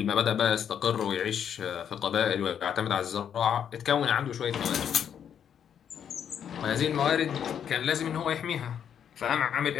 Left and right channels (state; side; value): quieter; right; 8.6 dB